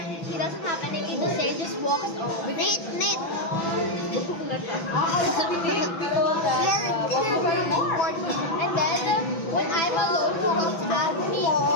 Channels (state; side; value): late; right; 6.0 ms